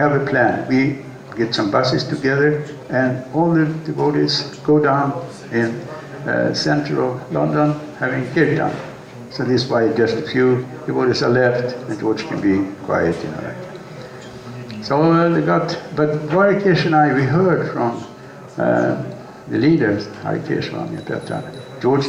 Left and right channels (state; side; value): identical; both; correlation 1.00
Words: a plan. We get some buses together, and all the devotees go down in central London having kirtan. So this is why just a few devotees are left, and George can be quiet, So they got, but Hare Krishna, we heard from the leaders, Hare Krishna at that time, George